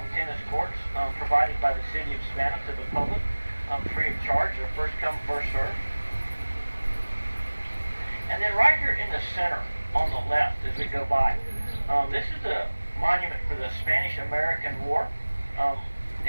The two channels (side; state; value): both; inverted; correlation -1.00